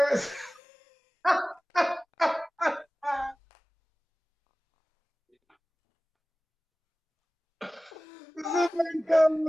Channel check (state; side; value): normal; both; correlation 0.98